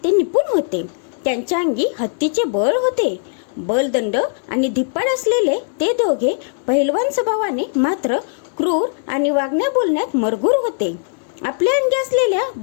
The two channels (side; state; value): right; silent; 66 dB below the other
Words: ते निपुण होते। त्यांच्या अंगी हत्तीचे बळ होते। बलदंड आणि धिप्पाड असलेले ते दोघे पैलवान स्वभावाने मात्र क्रूर आणि वागण्या बोलण्यात मरगूर होते। आपल्या अंगी असलेल्या